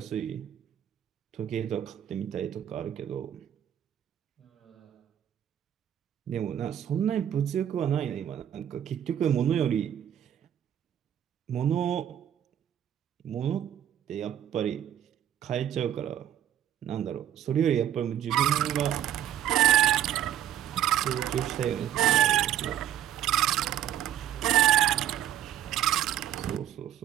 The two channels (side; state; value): left; quieter; 10.8 dB